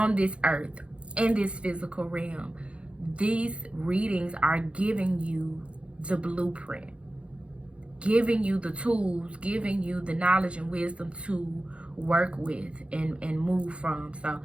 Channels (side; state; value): left; late; 0.060 ms